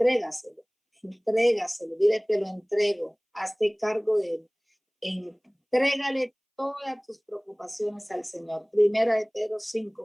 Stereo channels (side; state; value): both; identical; correlation 1.00